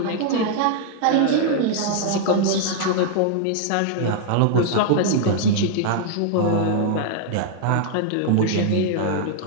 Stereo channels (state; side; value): different; both; correlation -0.01